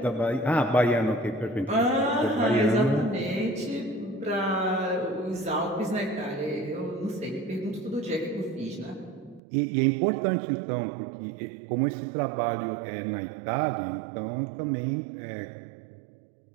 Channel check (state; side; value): drops out; left; at 9.4 s